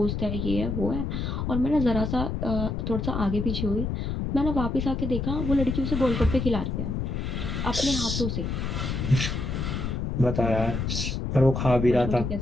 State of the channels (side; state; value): left; noise; rumble, 2 dB below the sound